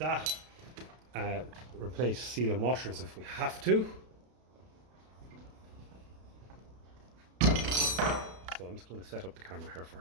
Replace seal and washers if we have to. So I'm just going to set up the camera here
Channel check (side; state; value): left; late; 32 ms